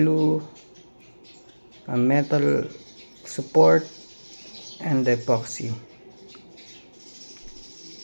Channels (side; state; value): both; inverted; correlation -1.00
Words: a metal support, and the epoxy.